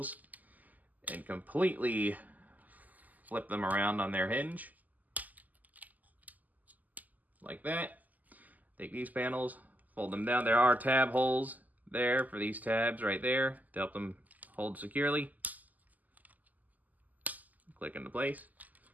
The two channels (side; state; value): left; late; 0.081 ms